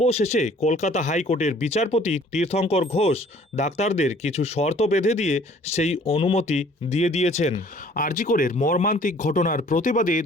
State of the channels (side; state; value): both; normal; correlation 0.55